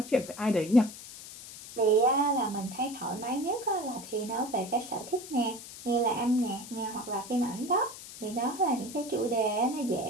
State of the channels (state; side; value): noise; left; hiss, 14 dB below the sound